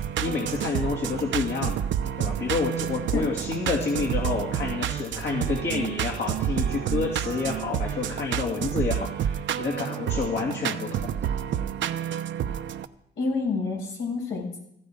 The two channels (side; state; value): both; normal; correlation 0.42